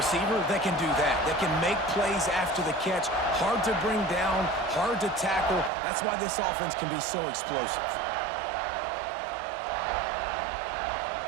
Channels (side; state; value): left; drops out; at 5.7 s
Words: They can do that. They can make plays after the catch. Hard to bring down, hard to tackle. That's why this offense can be so explosive.